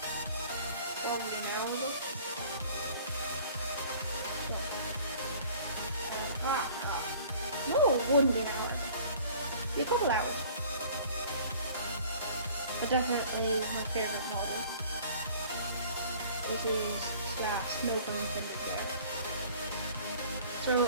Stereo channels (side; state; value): both; inverted; correlation -0.49